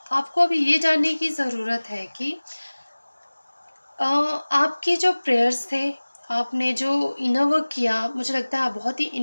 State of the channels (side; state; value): both; inverted; correlation -1.00